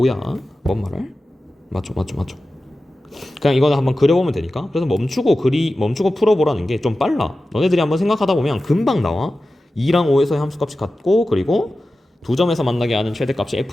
뭔 말을? 맞죠. 그냥 이거는 한번 그려보면 되니까. 그래서 멈추고 풀어보라는 게 좀 빨라. 너네들이 한번 생각하다 보면 금방 나와. 2랑 5에서의 함수값이 같고 그리고 두 점에서 만나게 하는 최대값이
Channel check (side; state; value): both; normal; correlation 0.94